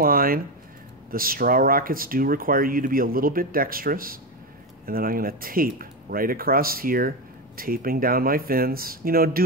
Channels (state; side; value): normal; both; correlation 0.14